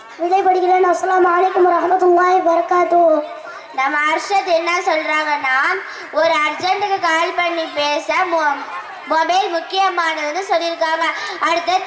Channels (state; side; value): identical; both; correlation 1.00